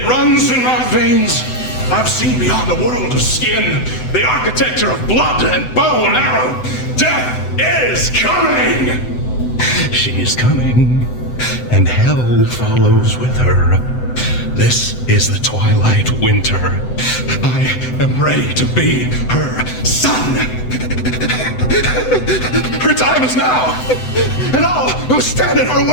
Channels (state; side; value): late; right; 7.9 ms